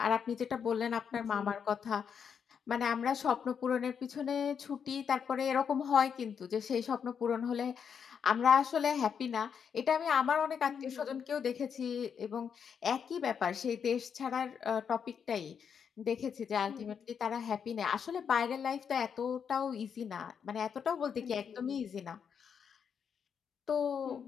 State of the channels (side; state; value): right; quieter; 7.2 dB